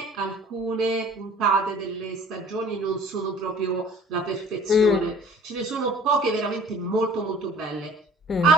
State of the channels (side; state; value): both; normal; correlation 0.49